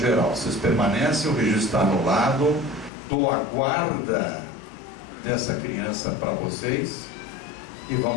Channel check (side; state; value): right; drops out; at 2.9 s